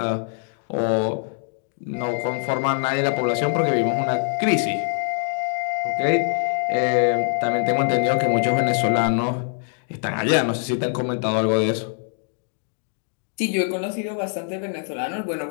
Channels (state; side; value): silent; right; 63 dB below the other